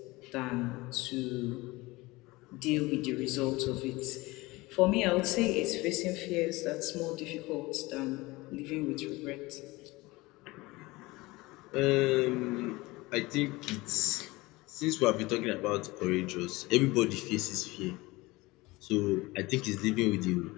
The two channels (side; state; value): right; quieter; 21.5 dB